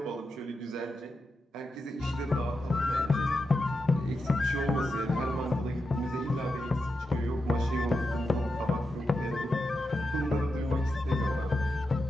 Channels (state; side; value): normal; both; correlation 0.88